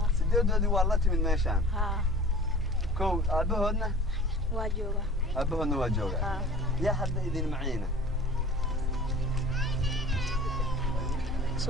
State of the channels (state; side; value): normal; both; correlation 0.43